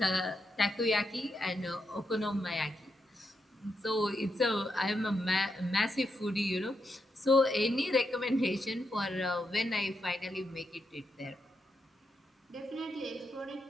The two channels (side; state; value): both; normal; correlation 0.83